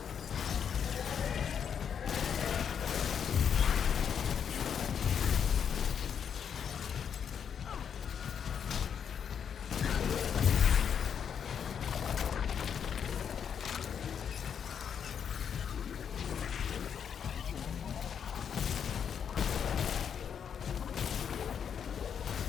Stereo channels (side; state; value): right; quieter; 7.7 dB